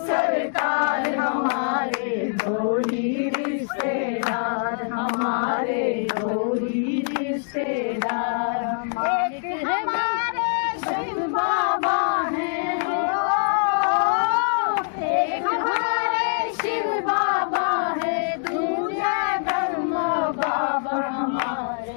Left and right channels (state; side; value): silent; right; 63 dB below the other